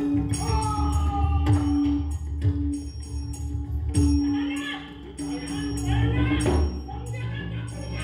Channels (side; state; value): both; identical; correlation 1.00